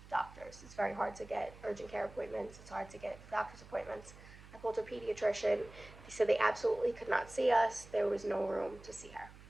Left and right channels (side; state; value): right; noise; hum, 19 dB below the sound